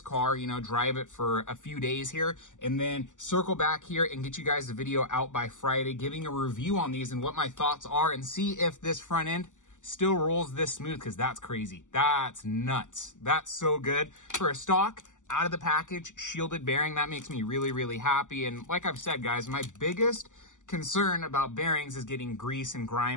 car, you know, drive it for a few days here, and then circle back here and get you guys the video out by Friday, giving a review on these and what my thoughts are, and see if this front end still rolls this smooth, because that's crazy. That's nuts. That's so good. For a stock, out of the package, shielded bearing, that makes me really happy. And like I've said, guys, my biggest concern about bearings is getting grease and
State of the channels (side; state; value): right; late; 0.86 ms